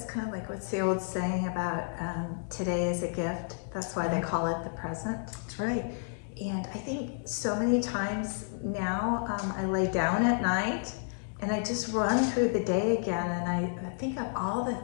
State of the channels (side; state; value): right; silent; digital silence